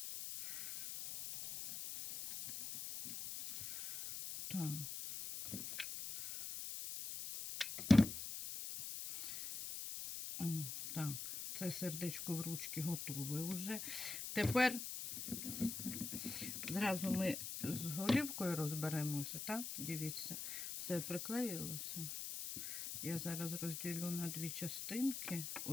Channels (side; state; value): left; noise; hiss, 6 dB below the sound